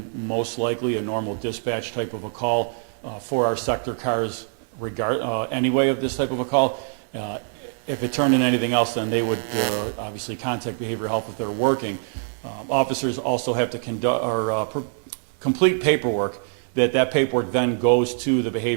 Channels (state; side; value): silent; left; digital silence